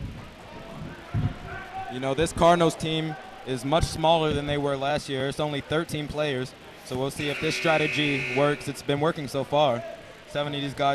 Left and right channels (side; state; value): both; identical; correlation 1.00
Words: This Cardinals team is much smaller than they were last year. It's only 13 players, so we'll see if this strategy works. It's been working so far. 7 of these